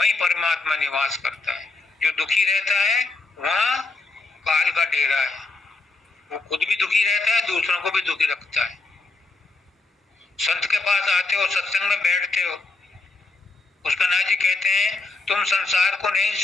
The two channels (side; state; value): right; quieter; 3.6 dB